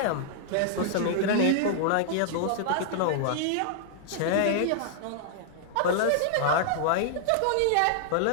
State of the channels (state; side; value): different; both; correlation -0.01